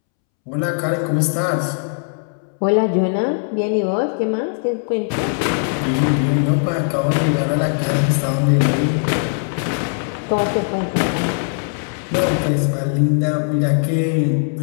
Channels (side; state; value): right; silent; 66 dB below the other